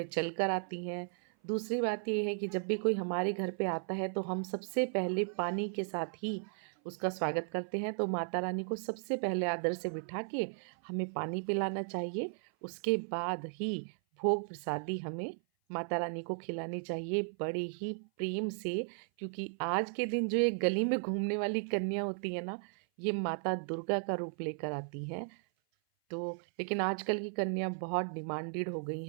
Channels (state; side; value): silent; left; 54 dB below the other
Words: चल कर आती हैं, दूसरी बात ये है कि जब भी कोई हमारे घर पे आता है तो हम सबसे पहले पानी के साथ ही उसका स्वागत करते हैं। तो माता रानी को सबसे पहले आदर से बिठा के हमें पानी पिलाना चाहिए, उसके बाद ही भोग प्रसादी हमें माता रानी को खिलानी चाहिए बड़े ही प्रेम से। क्योंकि आज के दिन जो ये गली में घूमने वाली कन्या होती है ना, ये माता दुर्गा का रूप लेकर आती हैं। तो लेकिन आजकल की कन्या बहुत डिमांडेड हो गई